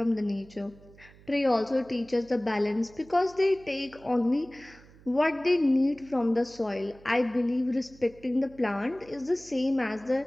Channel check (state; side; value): noise; right; hum, 24 dB below the sound